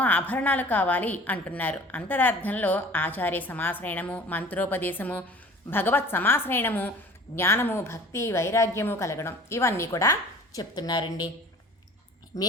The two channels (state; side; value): normal; both; correlation 0.45